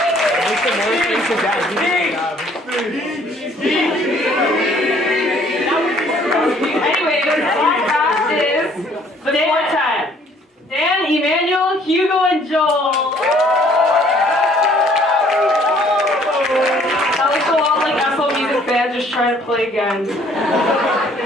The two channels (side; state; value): both; normal; correlation 0.60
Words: Anyway, the podcast is the quartet. Dan, Emmanuel, Hugo, and Joel. That looks a lot like Apple Music Band just trying to play again.